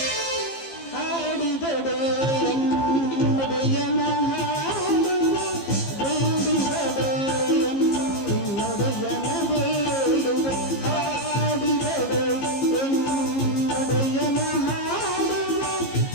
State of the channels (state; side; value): late; right; 15 ms